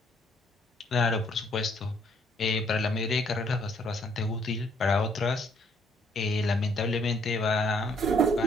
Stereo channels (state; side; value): normal; both; correlation 0.65